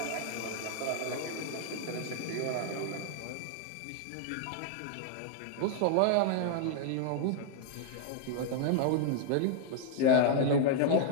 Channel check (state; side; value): different; both; correlation 0.00